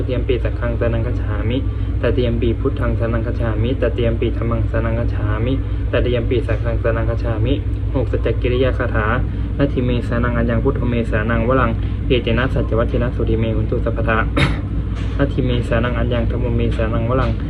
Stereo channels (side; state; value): both; identical; correlation 1.00